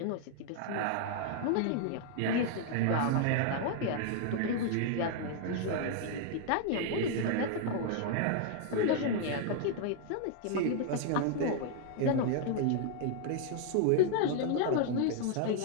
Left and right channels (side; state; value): both; different; correlation 0.00